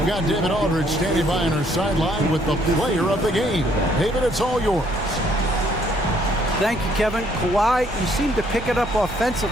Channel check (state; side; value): normal; both; correlation 0.66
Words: got David Aldridge standing by on our sideline with the player of the game. David, it's all yours. Thank you, Kevin. Kawhi, you seem to pick it up